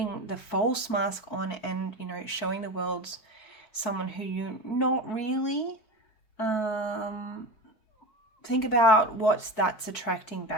the false mask on and, showing the world someone who you're not really, think about what that's attracting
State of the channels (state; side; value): late; right; 4.6 ms